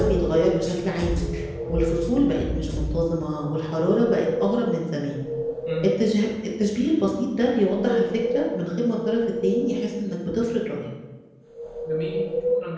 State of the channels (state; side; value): identical; both; correlation 1.00